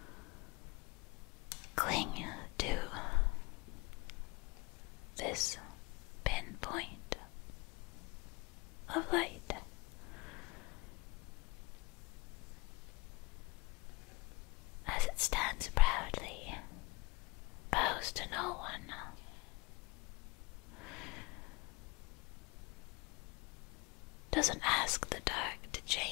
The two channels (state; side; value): quieter; right; 24.3 dB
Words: cling to this pinpoint of light. As it stands proudly, bows to no one. Doesn't ask the dark to